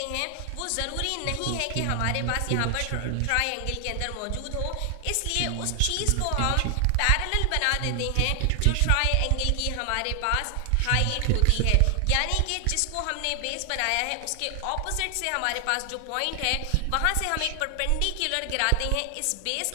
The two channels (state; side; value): different; both; correlation 0.00